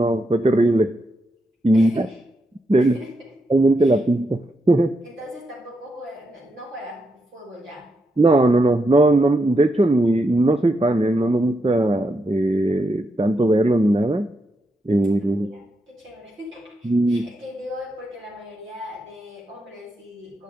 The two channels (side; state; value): both; normal; correlation 0.82